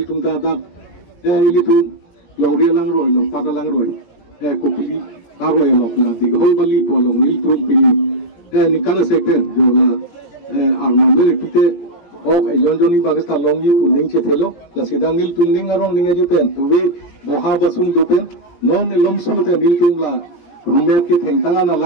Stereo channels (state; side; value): late; right; 17 ms